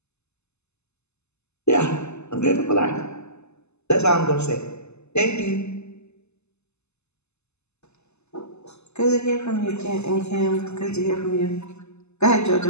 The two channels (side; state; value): right; late; 0.81 ms